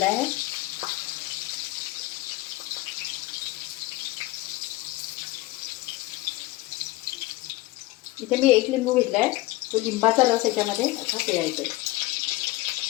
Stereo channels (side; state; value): right; quieter; 19.2 dB